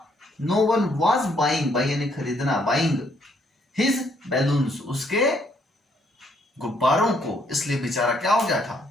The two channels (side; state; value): both; normal; correlation 0.69